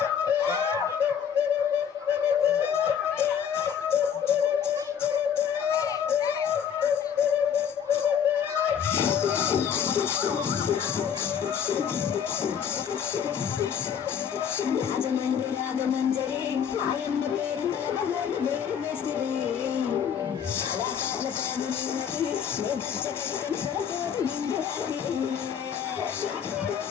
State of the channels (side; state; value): right; quieter; 8.1 dB